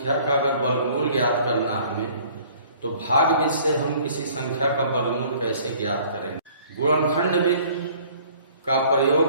का अगर वर्गमूल ज्ञात करना हमें, तो भाग विधि से हम किसी संख्या का वर्गमूल कैसे ज्ञात करेंगे। गुणनखंड विधि का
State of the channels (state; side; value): inverted; both; correlation -0.54